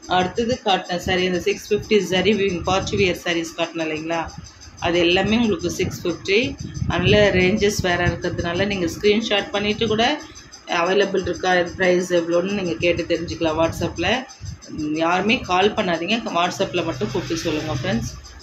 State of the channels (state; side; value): identical; both; correlation 1.00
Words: அடுத்தது காட்டின சாரீ அந்த 650 சரி பார்ட்டி வியர் சாரீஸ் காட்டினேன் இல்லைங்களா, அது எல்லாமே உங்களுக்கு 650. அதில் ரேஞ்சஸ் வேறு இருக்கிறதுனால நீங்கள் ஸ்க்ரீன்ஷாட் பண்ணிவிட்டு கூட அவைலபிள் இருக்கா, ப்ரைஸ் எவ்வளோன்னு நீங்கள் கேட்டு தெரிஞ்சுக்கலாம் வாட்ஸ்அப்பில். யாருமே கால் பண்ணாதீங்க, வாட்ஸ்அப்பில் மட்டும் கூப்பிட்டு சொல்லுங்கள் ஃப்ரெண்ட்ஸ்.